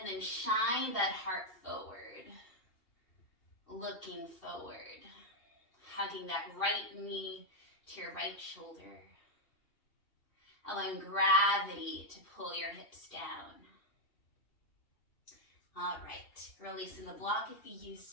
then shine that heart forward. Looking forward. Hugging that right knee to your right shoulder. Allowing gravity to pull your hips down. All right, releasing the block if you used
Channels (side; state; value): right; late; 2.7 ms